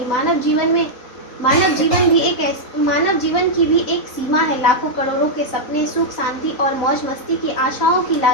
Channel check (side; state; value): right; late; 3.8 ms